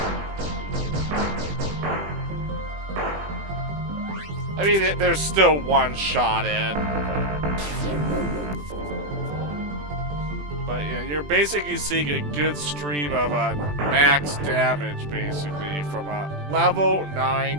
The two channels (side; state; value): left; late; 20 ms